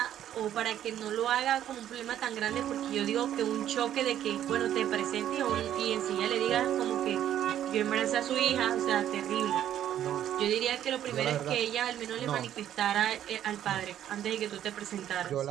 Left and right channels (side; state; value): left; quieter; 11.1 dB